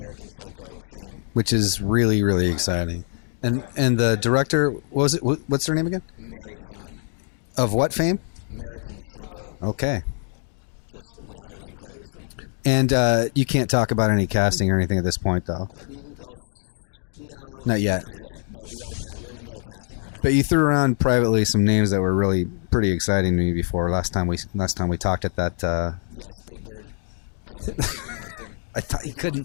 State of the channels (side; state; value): right; silent; digital silence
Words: Psycho fame, which is really, really exciting. Right. And the director, what's her name again? Mary Herron. Of what fame? American Psycho. Okay. Just loudly and clearly so we can... And you can't talk about any casting or anything at this point, though? No. Not yet. Not yet, but we're in the middle of casting right now. But you threw around privately some names that were really pretty exciting to me before. Last time we talked at that... Yes, Big Bird and Cookie Monster. Cookie